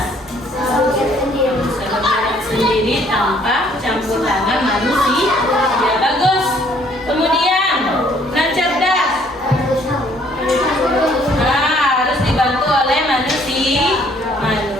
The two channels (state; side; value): normal; both; correlation 0.62